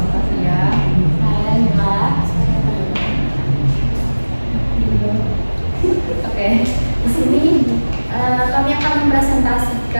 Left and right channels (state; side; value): inverted; both; correlation -1.00